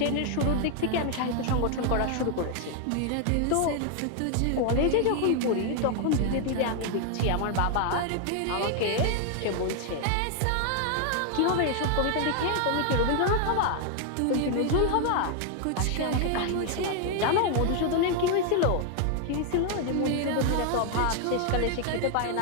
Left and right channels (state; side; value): different; both; correlation 0.00